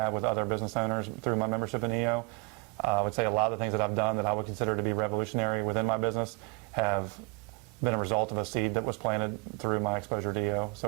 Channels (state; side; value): quieter; left; 30.6 dB